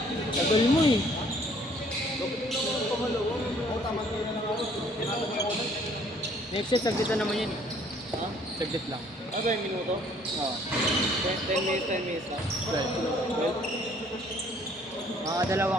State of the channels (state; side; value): normal; both; correlation 0.59